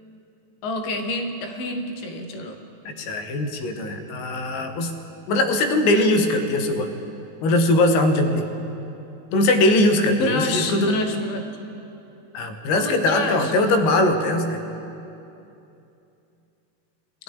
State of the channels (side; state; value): right; late; 19 ms